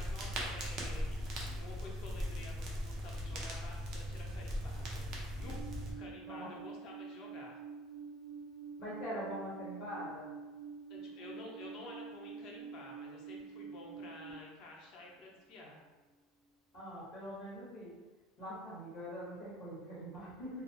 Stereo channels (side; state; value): both; normal; correlation 0.59